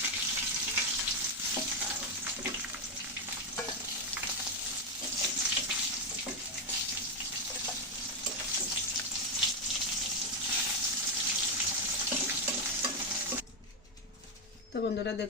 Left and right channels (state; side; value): normal; both; correlation 0.04